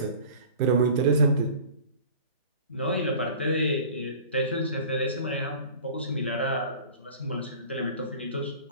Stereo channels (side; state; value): both; inverted; correlation -0.42